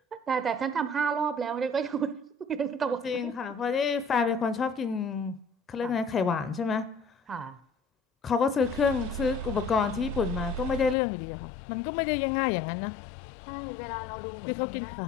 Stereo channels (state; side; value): drops out; right; at 11.0 s